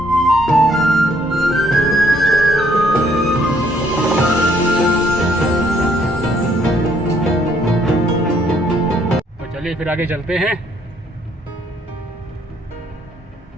तो चलिए फिर आगे चलते हैं,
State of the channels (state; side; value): normal; both; correlation 0.67